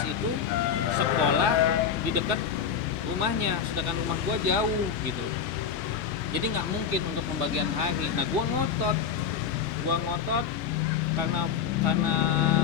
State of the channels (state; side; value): quieter; right; 7.2 dB